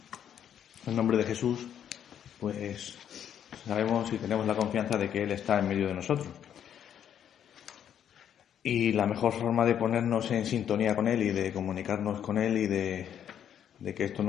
en nombre de Jesús, pues sabemos y tenemos la confianza de que Él está en medio de nosotros. Y la mejor forma de ponernos en sintonía con Él y de comunicarnos con Él y de que esto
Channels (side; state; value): right; quieter; 9.4 dB